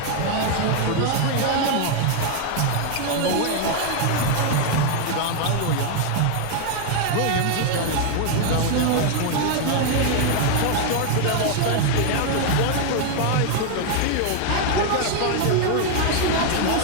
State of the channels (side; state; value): both; different; correlation 0.00